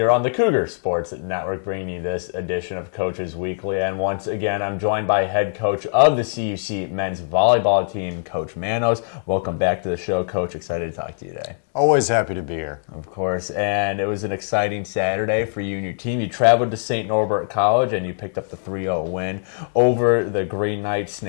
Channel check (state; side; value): silent; right; digital silence